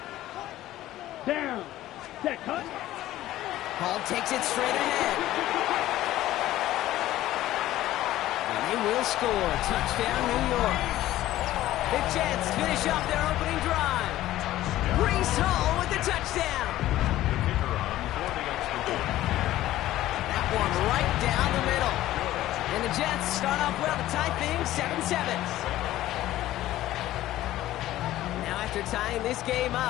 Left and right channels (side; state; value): right; quieter; 14.7 dB